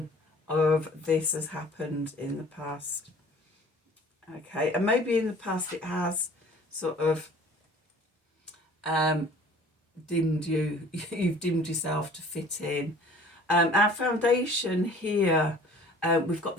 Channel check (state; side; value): normal; both; correlation 0.49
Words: of this has happened in the past. Okay, and maybe in the past it has sort of dimmed you. You've dimmed yourself to fit in. Our foundation here, we've got